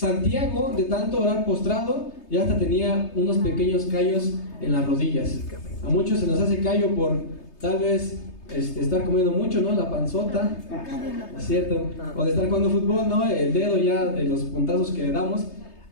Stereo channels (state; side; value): late; right; 3.3 ms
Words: de tanto orar postrado, ya hasta tenía unos pequeños callos en las rodillas. A muchos se nos hace callo por tal vez estar comiendo mucho, ¿no? La panzota, es cierto, o de estar jugando fútbol, ¿no? El dedo ya de los puntazos que le damos.